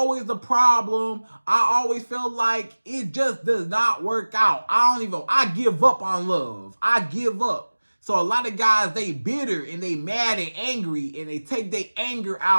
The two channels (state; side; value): inverted; both; correlation -1.00